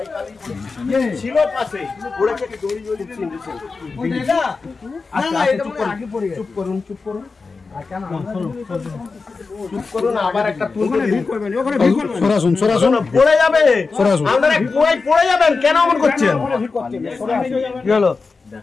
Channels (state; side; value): quieter; right; 4.3 dB